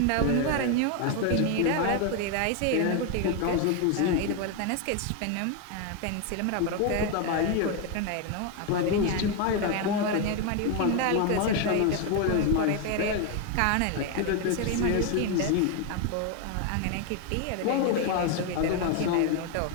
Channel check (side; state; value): both; different; correlation 0.01